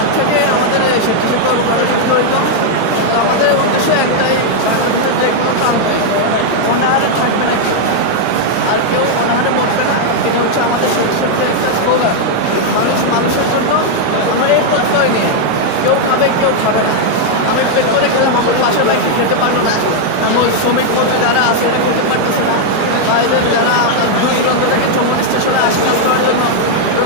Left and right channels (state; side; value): different; both; correlation 0.00